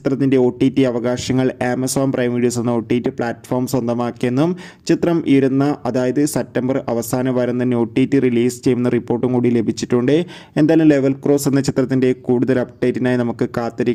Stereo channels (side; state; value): both; identical; correlation 1.00